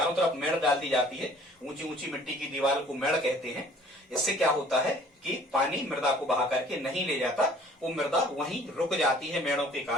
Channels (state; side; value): normal; both; correlation 0.53